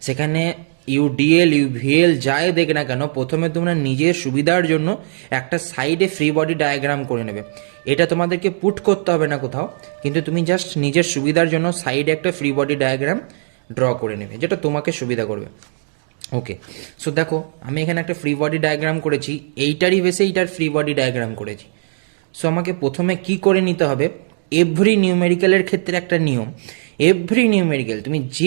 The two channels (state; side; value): silent; left; digital silence